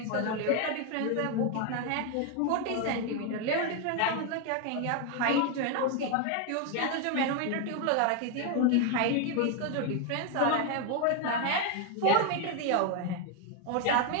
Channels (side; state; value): both; different; correlation 0.01